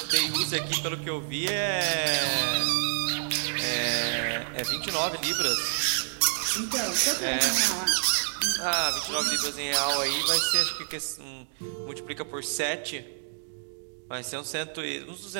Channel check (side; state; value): left; silent; digital silence